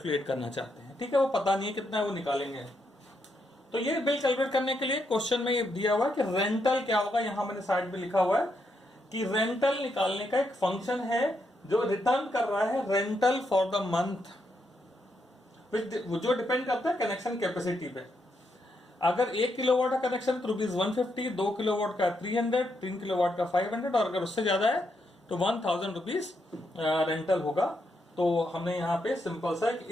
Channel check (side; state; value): both; normal; correlation 0.80